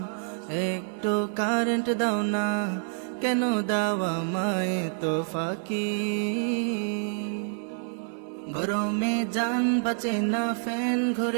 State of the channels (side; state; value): left; silent; digital silence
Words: একটু কারেন্ট দাও না, কেন দাও আমায় তো ফাঁকি। গরমে জান বাঁচে না, ফ্যান